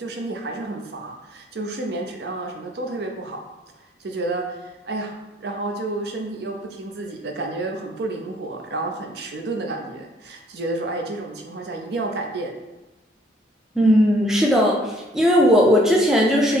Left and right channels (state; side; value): normal; both; correlation 0.61